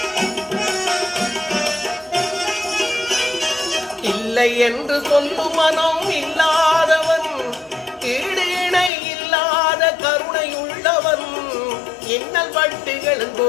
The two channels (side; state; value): right; drops out; at 8.9 s